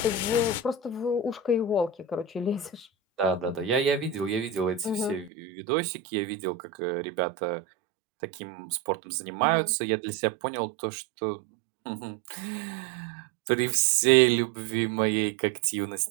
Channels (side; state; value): left; drops out; at 5.3 s